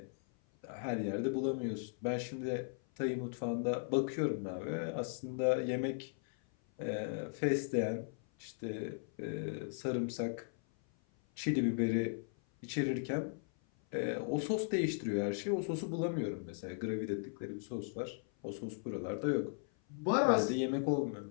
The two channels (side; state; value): right; silent; 53 dB below the other